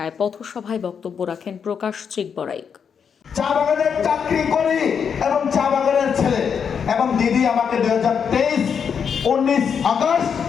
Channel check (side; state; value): right; quieter; 7.0 dB